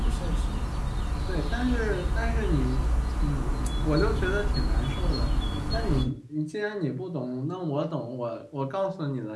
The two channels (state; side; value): identical; both; correlation 1.00